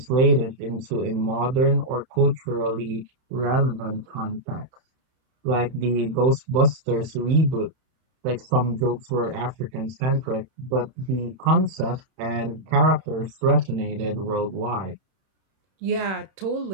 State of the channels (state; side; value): late; left; 31 ms